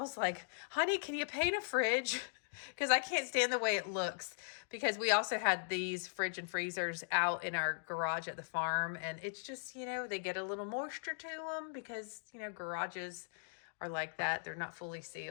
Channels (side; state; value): right; silent; digital silence